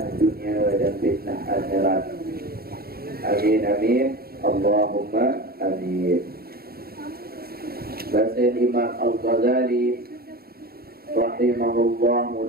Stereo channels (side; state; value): left; late; 0.44 ms